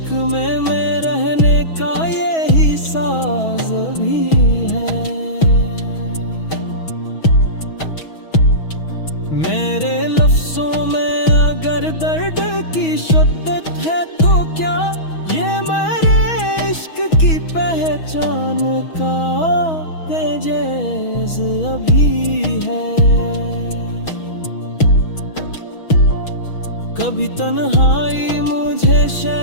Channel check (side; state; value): right; late; 6.2 ms